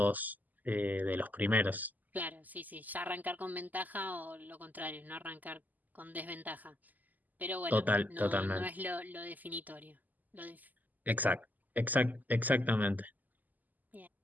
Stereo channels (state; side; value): late; left; 0.082 ms